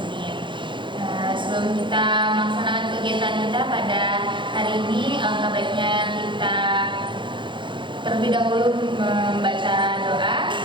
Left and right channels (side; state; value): left; late; 0.23 ms